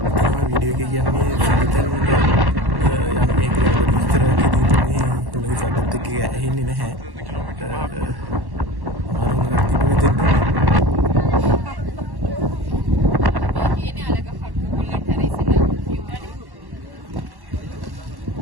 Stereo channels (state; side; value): late; left; 1.1 ms